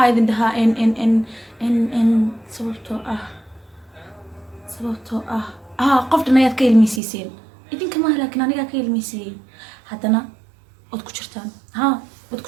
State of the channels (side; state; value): left; drops out; at 7.0 s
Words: idin dhahaa in sababtoo ah qoftan ayaad ka ilmisiiseen idinka ma laakiin aniga ka ilmisiyay hadana wad ku jirtaan